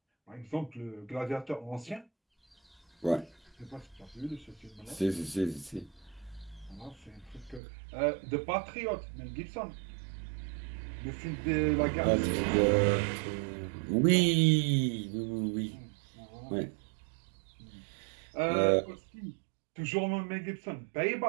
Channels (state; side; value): drops out; left; at 7.6 s